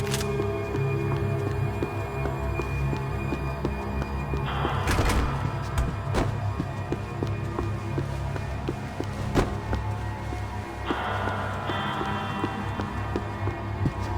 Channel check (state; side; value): identical; both; correlation 1.00